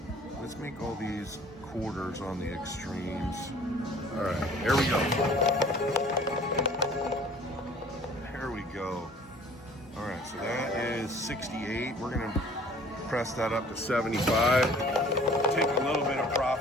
make all these quarters on the extremes. All right, here we go. Here we go. All right, so that is 68. We're gonna press that up to 75. Take a little bit of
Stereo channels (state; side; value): normal; both; correlation 0.51